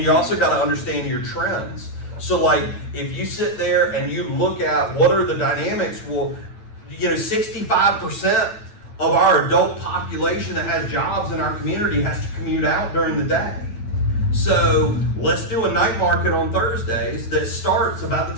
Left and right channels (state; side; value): late; right; 9.3 ms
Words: you also gotta understand your trends. So like, if you sit there and you look at what are the dynamics, well, you know, 65% of our adult population that has jobs in our community has to commute out during the day. So let's do a night market on Thursdays that starts about